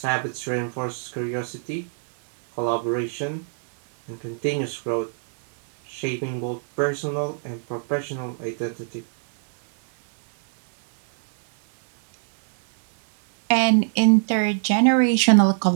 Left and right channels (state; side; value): silent; left; digital silence